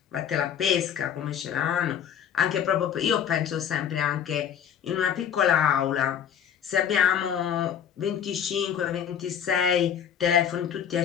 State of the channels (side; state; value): right; quieter; 8.7 dB